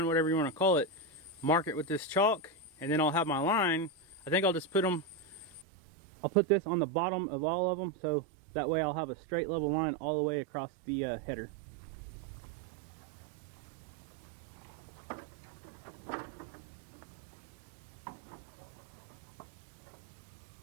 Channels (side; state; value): left; drops out; at 5.7 s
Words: whatever you want to call it. Mark it with this chalk, and then I'll have my line. I think I'll just put them, I'll put this on the bottom of all of them, so that way I'll have a straight level line all the way across the header.